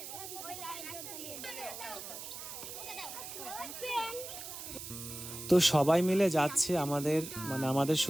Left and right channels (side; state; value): right; noise; hiss, 9 dB below the sound